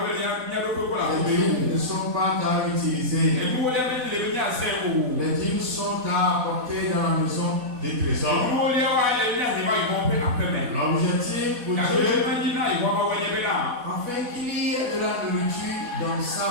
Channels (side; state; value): left; late; 4.1 ms